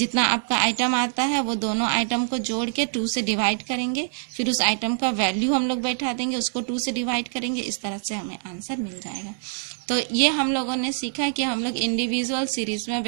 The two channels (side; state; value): left; silent; digital silence